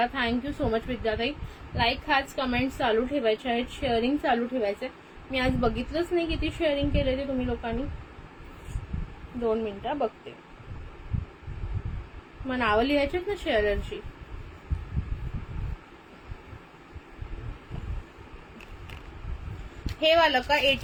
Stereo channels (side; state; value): both; identical; correlation 1.00